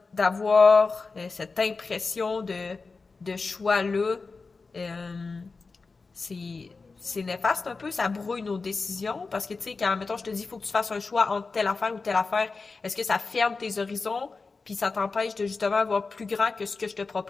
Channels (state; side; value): quieter; right; 4.2 dB